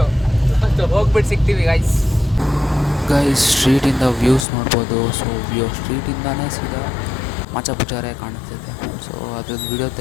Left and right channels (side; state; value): right; drops out; at 4.5 s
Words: ಹೋಗ್ಬಿಟ್ಟು ಸಿಗ್ತೀವಿ ಗೈಸ್. ಸ್ಟ್ರೀಟಿಂದ ವ್ಯೂಸ್ ನೋಡ್ಬೋದು. ಸೊ ಸ್ಟ್ರೀಟಿಂದಾನೇ ಸೀದಾ ಮಾಚಾಪುಚಾರೆ ಕಾಣಿಸ್ತಿದೆ. ಸೊ ಅದ್ರದ್ದು ವಿಡಿಯೋ